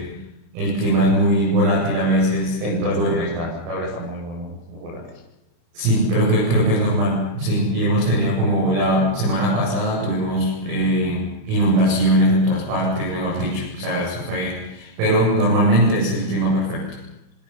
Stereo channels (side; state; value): left; late; 35 ms